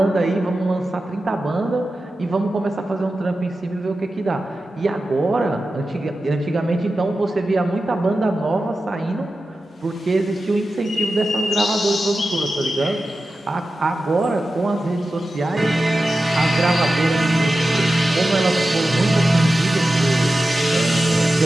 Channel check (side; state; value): both; normal; correlation 0.93